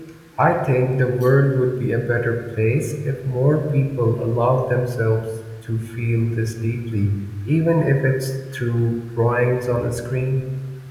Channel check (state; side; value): identical; both; correlation 1.00